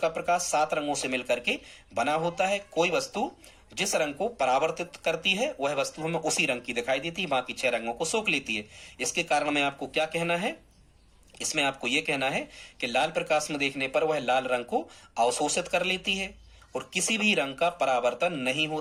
प्रकाश 7 रंगों से मिलकर के बना होता है, कोई वस्तु जिस रंग को परावर्तित करती है वह वस्तु हमें उसी रंग की दिखाई देती है, बाकी 6 रंगों को सोख लेती है। इसके कारण में आपको क्या कहना है, इसमें आपको यह कहना है कि लाल प्रकाश में देखने पर वह लाल रंग को अवशोषित कर लेती है और किसी भी रंग का परावर्तन नहीं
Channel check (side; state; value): both; identical; correlation 1.00